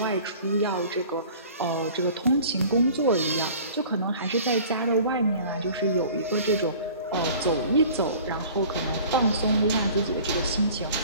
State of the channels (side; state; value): both; inverted; correlation -0.46